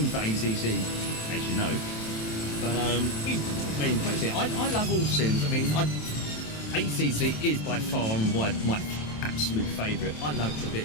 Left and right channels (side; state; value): right; late; 27 ms